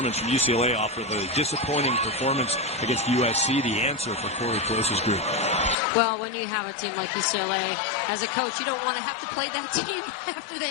from UCLA off of a disappointing performance against USC, the answer for Corey Close's group. Well, when you have a team like UCLA, as a coach, you don't want to have to play that team after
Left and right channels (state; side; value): drops out; right; at 5.8 s